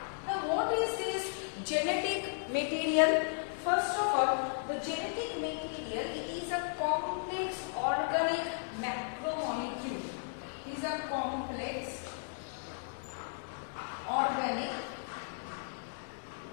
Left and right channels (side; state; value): right; silent; digital silence